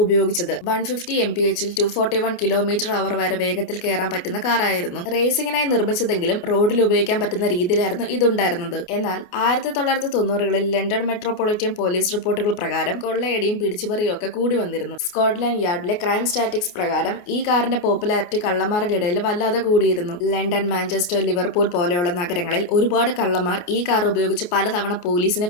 ഉപയോഗിച്ചത്. 150 mph 241 km/h വരെ വേഗത്തിൽ കയറാൻ പറ്റുന്ന കാറായിരുന്നു. റേസിംഗിനായി നിർമ്മിച്ചതെങ്കിലും റോഡിൽ ഉപയോഗിക്കാൻ പറ്റുന്ന രീതിയിലായിരുന്നു ഇതുണ്ടായിരുന്നത്. എന്നാൽ 1990കളിൽ ലണ്ടൻ മെട്രോപൊളിറ്റൻ പോലീസ് റിപ്പോർട്ടുകൾ പ്രകാരം കൊള്ളയടിയും പിടിച്ചുപറിയും ഒക്കെ കൂടി വന്നിരുന്നു. സ്കോട്ട്ലാൻഡ് യാർഡിലെ ക്രൈം സ്റ്റാറ്റിക്സ് പ്രകാരം ഈ കാറിന്റെ പോപ്പുലാരിറ്റി കള്ളന്മാരുടെ ഇടയിൽ വല്ലാതെ കൂടിയിരുന്നു. ലണ്ടൻ, മാഞ്ചസ്റ്റർ, ലിവർപൂൾ പോലെയുള്ള നഗരങ്ങളിൽ ഒരുപാട് കള്ളന്മാർ ഈ കാർ ഉപയോഗിച്ച് പലതവണ പോലീസിനെ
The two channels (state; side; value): late; right; 28 ms